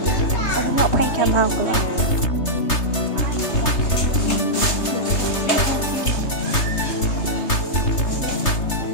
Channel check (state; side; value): late; right; 3.3 ms